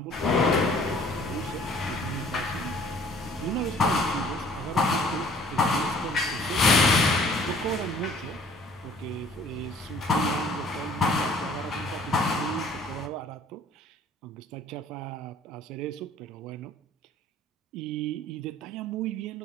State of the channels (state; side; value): normal; both; correlation 0.54